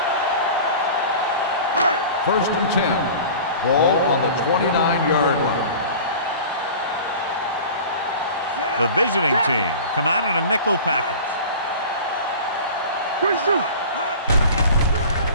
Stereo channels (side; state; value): both; inverted; correlation -0.38